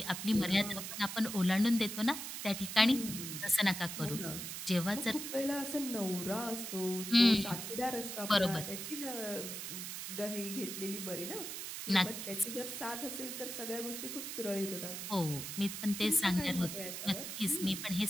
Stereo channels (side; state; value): right; noise; hiss, 6 dB below the sound